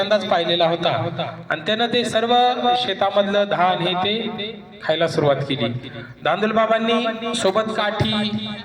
पाहिलेला होता आणि त्यानं ते सर्व शेतामधलं धान हे ते खायला सुरुवात केली. धांदूल बाबांनी सोबत काठी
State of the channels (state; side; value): identical; both; correlation 1.00